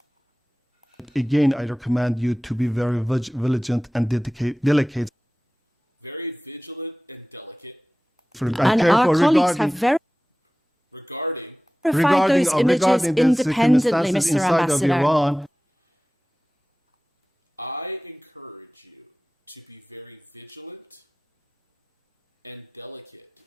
Again, I recommend you to be very vigilant and delicate. Very vigilant and delicate. And our colleagues have regarding those images independently, Mr. Ambassador. I encourage you to be very vigilant and delicate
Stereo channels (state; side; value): normal; both; correlation 0.97